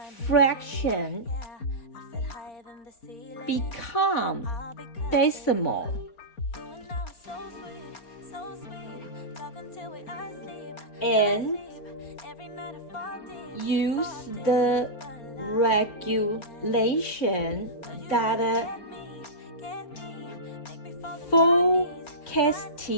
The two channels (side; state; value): right; late; 4.2 ms